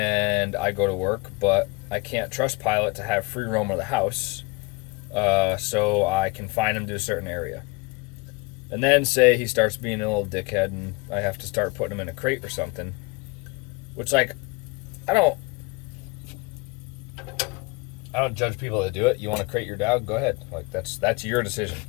I go to work, but I can't trust Pilot to have free roam of the house, so I confine him to a certain area. And then say he starts being a little dickhead and I have to start putting him in a crate or something. Which, like, I don't judge people that do it. You want to crate your dog? Go ahead. Like, that's your decision.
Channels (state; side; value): quieter; right; 27.1 dB